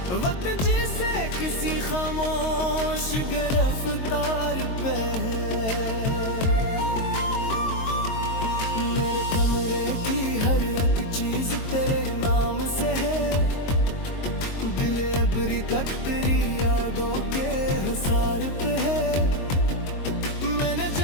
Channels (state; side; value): late; right; 22 ms